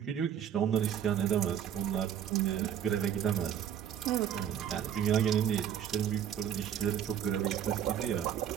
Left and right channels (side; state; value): left; quieter; 9.4 dB